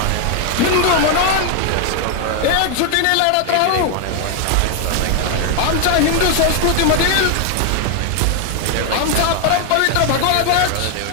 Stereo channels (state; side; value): different; both; correlation 0.00